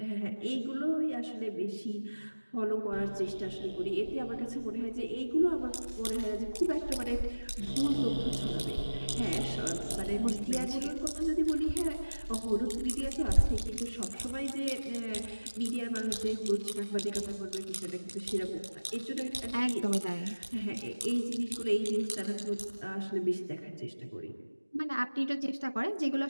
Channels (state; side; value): inverted; both; correlation -1.00